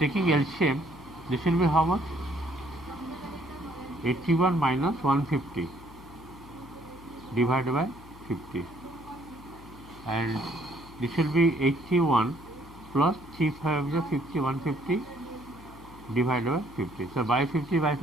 LCM, this will be how much? 81 minus 150 divided by 50. And this will be 81 plus 3 5 is 50, 150 divided by 50. So by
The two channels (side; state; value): left; noise; hum, 19 dB below the sound